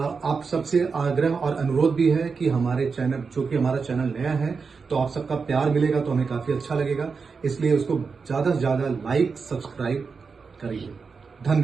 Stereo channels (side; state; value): left; quieter; 5.1 dB